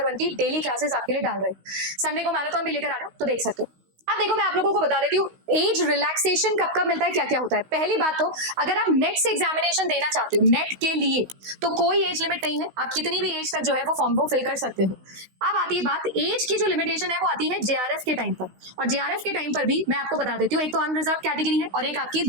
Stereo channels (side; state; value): left; late; 16 ms